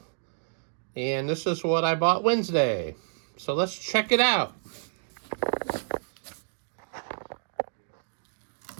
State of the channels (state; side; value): silent; left; digital silence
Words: and this is what I bought Wednesday. So let's check it out.